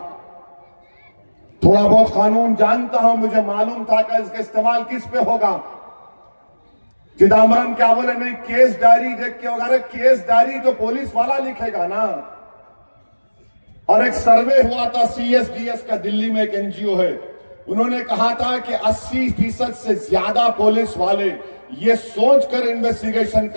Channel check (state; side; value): inverted; both; correlation -1.00